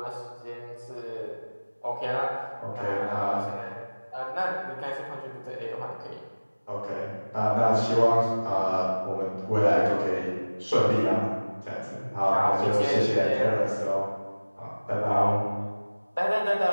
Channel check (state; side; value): inverted; both; correlation -1.00